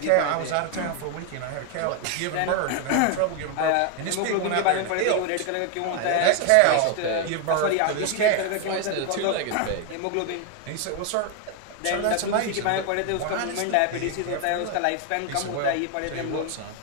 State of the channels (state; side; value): different; both; correlation 0.01